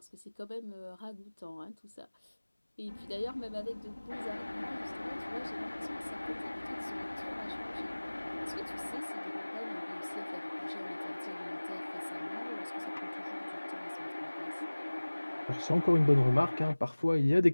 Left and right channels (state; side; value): inverted; both; correlation -1.00